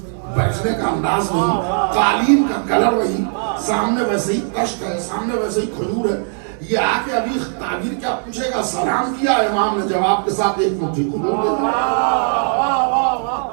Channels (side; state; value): left; silent; 58 dB below the other